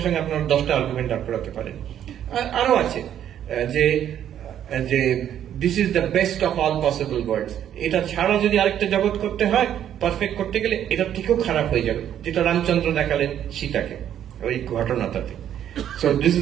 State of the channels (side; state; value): left; quieter; 10.3 dB